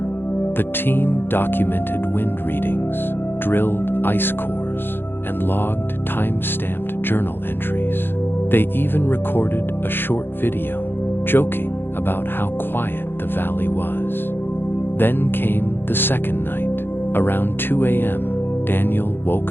The team documented wind readings, drilled ice cores, and logged time-stamped journal entries. They even recorded a short video, joking about how quiet the valley was. Then came the second night. Around 2 a.m., Daniel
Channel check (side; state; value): right; late; 0.10 ms